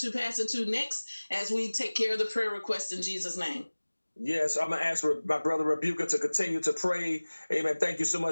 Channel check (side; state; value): both; inverted; correlation -1.00